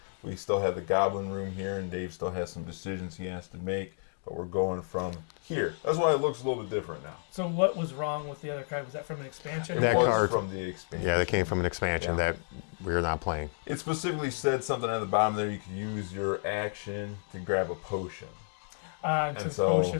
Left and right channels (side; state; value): right; silent; 57 dB below the other